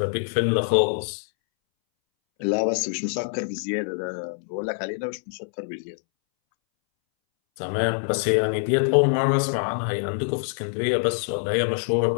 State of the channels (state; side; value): silent; right; 62 dB below the other